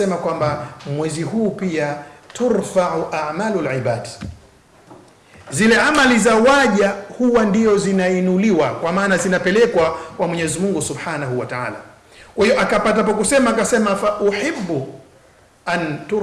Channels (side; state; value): both; identical; correlation 1.00